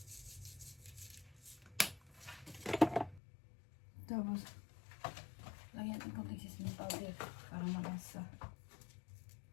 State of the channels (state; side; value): drops out; right; at 3.2 s